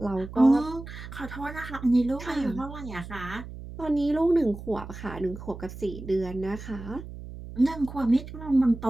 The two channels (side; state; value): right; noise; hum, 12 dB below the sound